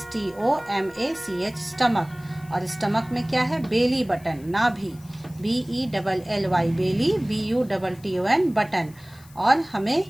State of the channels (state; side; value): noise; left; hiss, 25 dB below the sound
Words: स्टमक। और स्टमक में क्या है? बेली बटन, नाभि, BELLY, बेली, BUTTON, बटन। और हमें